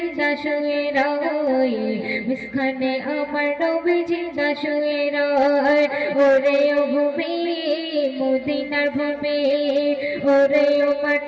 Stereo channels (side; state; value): both; identical; correlation 1.00